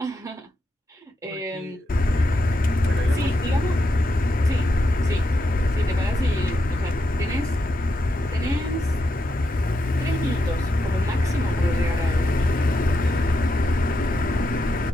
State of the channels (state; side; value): normal; both; correlation 0.84